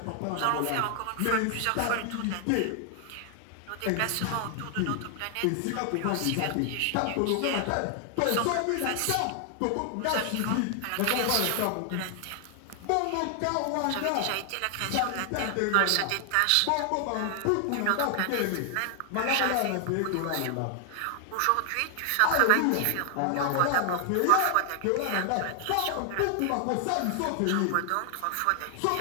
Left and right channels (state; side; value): different; both; correlation 0.00